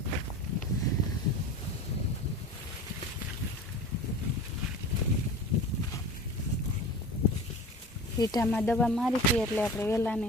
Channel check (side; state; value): both; normal; correlation 0.36